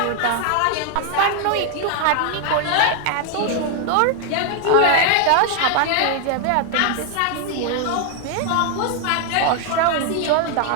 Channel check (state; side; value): different; both; correlation 0.00